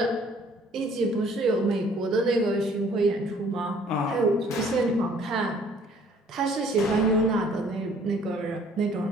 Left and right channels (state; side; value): normal; both; correlation 0.58